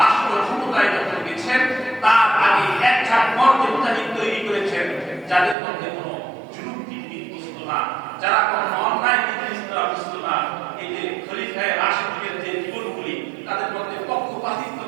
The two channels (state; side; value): drops out; left; at 5.6 s